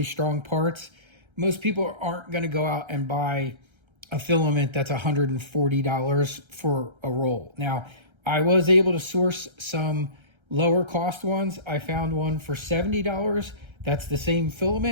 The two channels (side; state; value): left; late; 1.3 ms